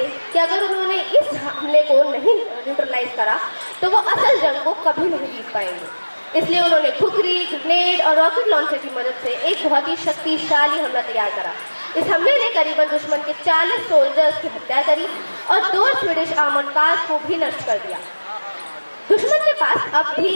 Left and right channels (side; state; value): both; inverted; correlation -1.00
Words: कि अगर उन्होंने इस हमले को नहीं न्यूट्रलाइज करा तो वो असल जंग को कभी नहीं जीत पाएंगे। इसलिए उन्होंने खुखरी, ग्रेनेड और रॉकेट लॉन्चर की मदद से एक बहुत ही शक्तिशाली हमला तैयार करा। इस हमले ने करीबन दुश्मन के 40 सोल्जर्स की हत्या करी और 2 स्वीडिश आर्मर्ड कार्स को भी नष्ट कर दिया। दुश्मन के पास अब